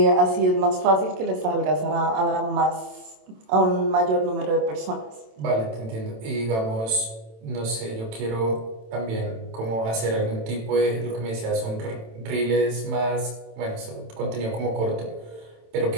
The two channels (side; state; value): left; late; 27 ms